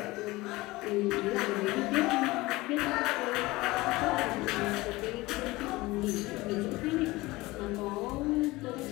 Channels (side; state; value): right; quieter; 20.5 dB